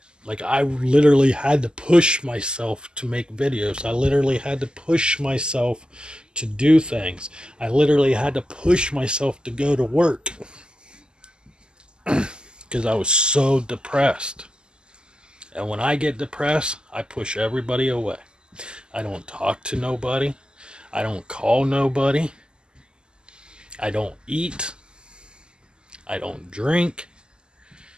Like I literally had to push myself to make videos. I literally had to push myself to do things. I literally had to push myself to go to work because I was so depressed. And when I get depressed, I push everybody away. I don't talk to nobody. I don't call nobody. I don't eat. I don't drink.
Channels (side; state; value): left; late; 0.047 ms